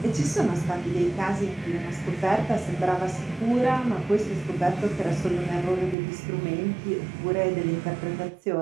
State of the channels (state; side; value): drops out; left; at 6.0 s